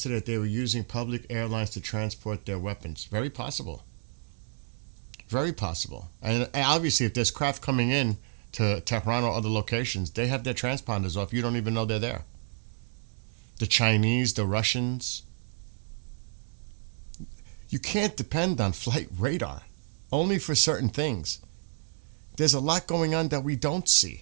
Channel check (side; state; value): left; silent; digital silence